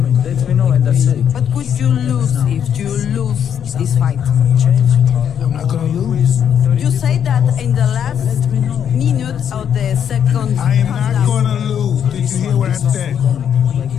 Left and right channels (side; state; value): right; quieter; 8.6 dB